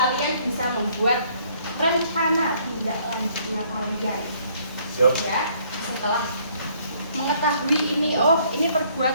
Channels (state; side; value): inverted; both; correlation -0.64